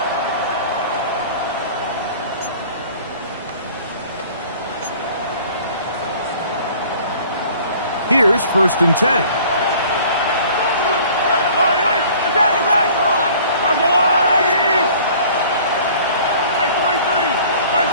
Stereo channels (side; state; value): both; inverted; correlation -0.50